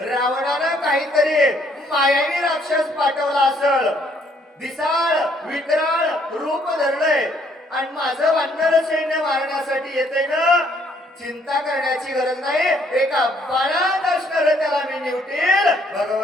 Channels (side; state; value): both; normal; correlation 0.66